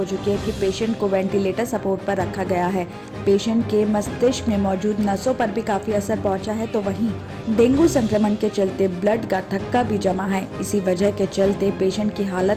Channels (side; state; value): both; identical; correlation 1.00